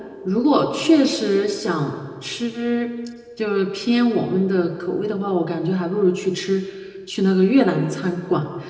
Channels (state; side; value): identical; both; correlation 1.00